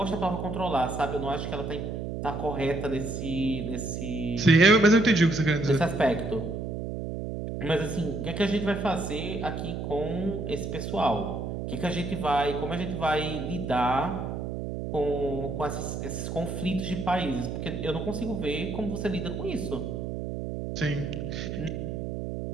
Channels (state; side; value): noise; right; hum, 5 dB below the sound